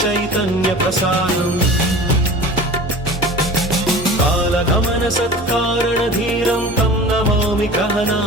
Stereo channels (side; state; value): both; normal; correlation 0.38